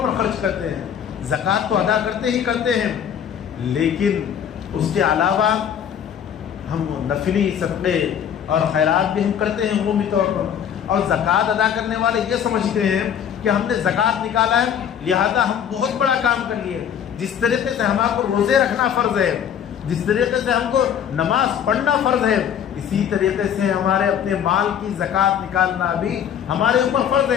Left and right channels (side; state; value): right; quieter; 8.8 dB